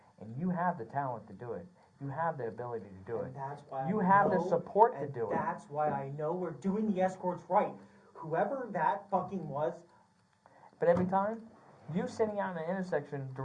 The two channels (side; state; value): both; identical; correlation 1.00